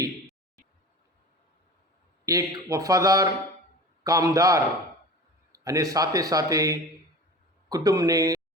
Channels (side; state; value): both; normal; correlation 0.36